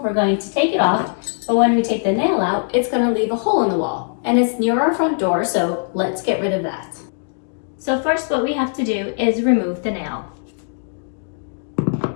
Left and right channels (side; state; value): right; silent; digital silence